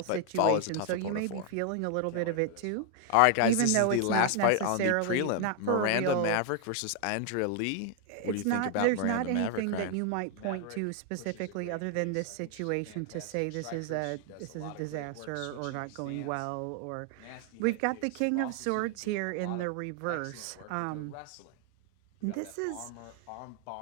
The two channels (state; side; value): different; both; correlation 0.00